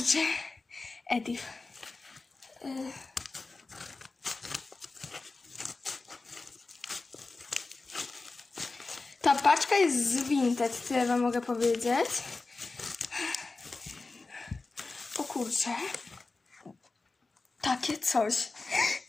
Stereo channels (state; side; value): quieter; right; 3.7 dB